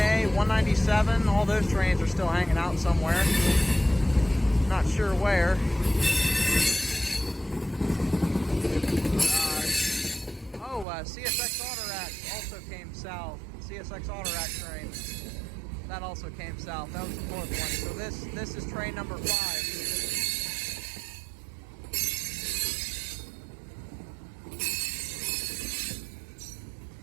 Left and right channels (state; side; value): drops out; left; at 10.9 s